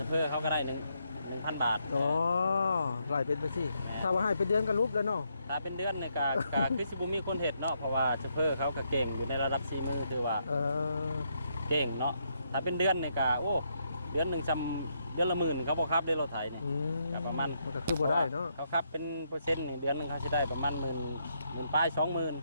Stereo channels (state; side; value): inverted; both; correlation -0.77